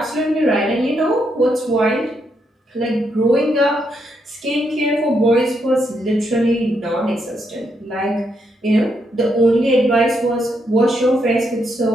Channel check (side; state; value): both; normal; correlation 0.78